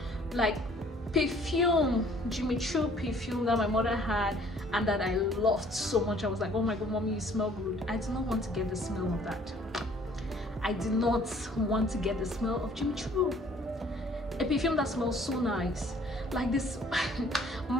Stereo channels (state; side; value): normal; both; correlation 0.57